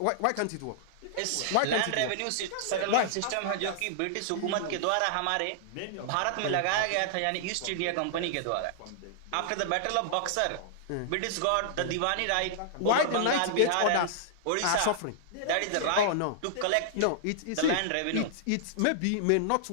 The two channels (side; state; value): both; different; correlation -0.01